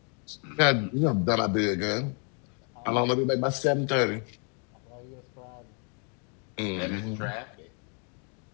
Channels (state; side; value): quieter; right; 38.5 dB